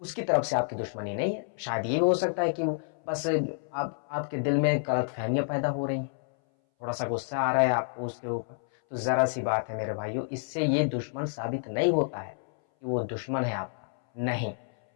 اس کی طرف سے آپ کی دشمنی نہیں ہے۔ شاید یہ بھی ہو سکتا ہے کہ بس آپ کے دل میں غلط فہمیاں پیدا ہو رہی ہیں، تھوڑا سا غصہ آ رہا ہے آپ کو اس کے اوپر، تو ذرا سی بات ہے میرے بھائیوں، اس سے یہ دشمن ثابت نہیں ہوتا ہے کہ وہ دشمن ہے آپ کا، نہیں۔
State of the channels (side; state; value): right; silent; 58 dB below the other